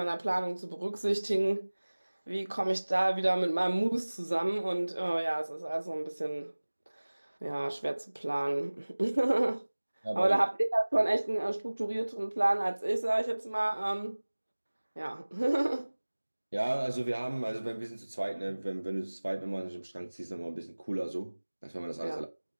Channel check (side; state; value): both; inverted; correlation -1.00